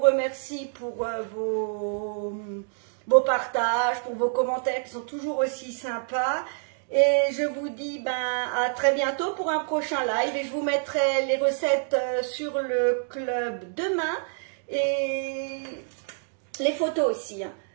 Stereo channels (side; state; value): left; silent; digital silence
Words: pour vos partages, pour vos commentaires qui sont toujours aussi sympas. Et je vous dis à très bientôt pour un prochain live. Et je vous mettrai les recettes sur le club demain. Et les photos aussi. Hein.